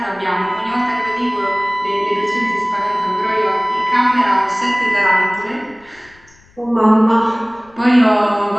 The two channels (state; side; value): noise; left; rumble, 30 dB below the sound